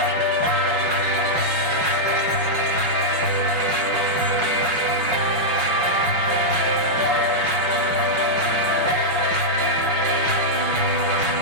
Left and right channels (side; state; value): left; late; 6.1 ms